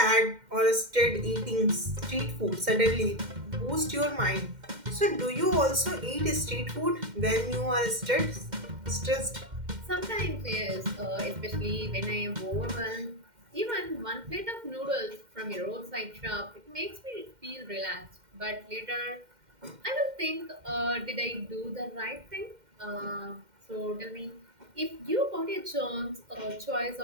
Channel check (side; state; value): left; late; 2.1 ms